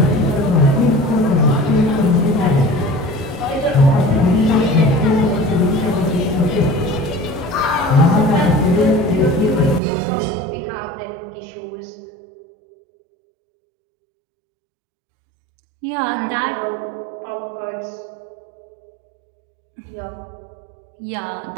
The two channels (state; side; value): drops out; left; at 9.8 s